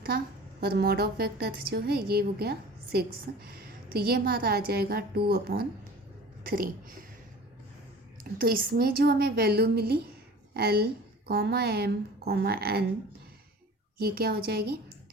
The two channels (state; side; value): normal; both; correlation 0.42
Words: था और मॉड ऑफ वेक्टर जो है ये हो गया 6, तो ये हमारा आ जाएगा 2/3। तो इसमें जो हमें वैल्यू मिली L, M, N, ये क्या हो जाएगी?